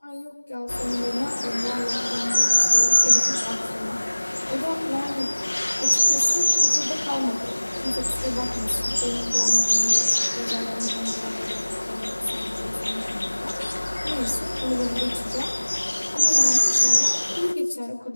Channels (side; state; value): both; inverted; correlation -1.00